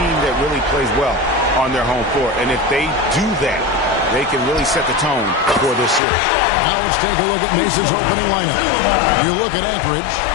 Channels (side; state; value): right; drops out; at 6.0 s